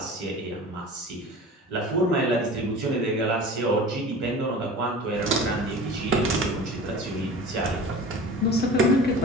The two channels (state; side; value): normal; both; correlation 0.38